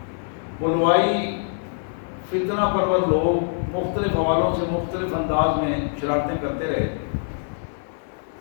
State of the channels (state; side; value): silent; right; 63 dB below the other